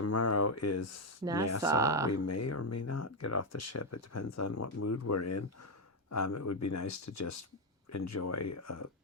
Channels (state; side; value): normal; both; correlation 0.04